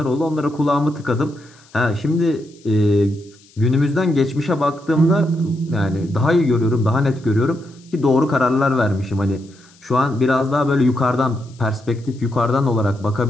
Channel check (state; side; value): noise; left; hiss, 28 dB below the sound